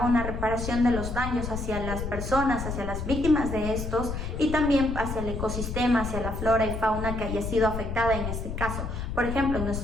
una reparación de los daños hacia las personas, hacia las víctimas de estos y también hacia el ecosistema, hacia la flora y fauna que haya sido afectada en este caso. Por ejemplo, en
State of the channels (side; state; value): left; noise; rumble, 5 dB below the sound